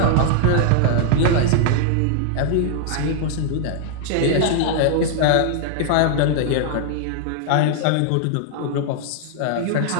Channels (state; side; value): different; both; correlation 0.00